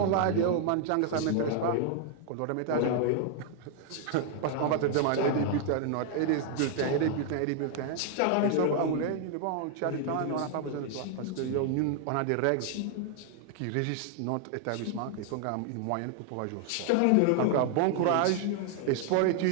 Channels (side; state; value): both; different; correlation 0.00